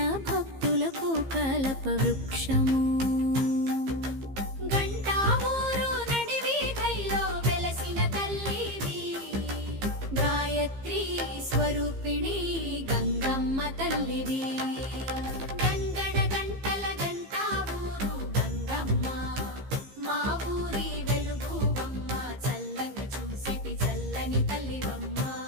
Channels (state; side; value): late; left; 15 ms